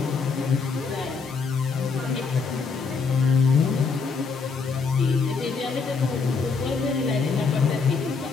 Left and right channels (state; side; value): quieter; right; 4.9 dB